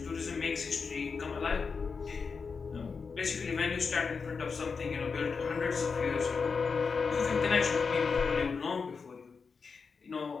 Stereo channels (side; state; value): right; quieter; 5.2 dB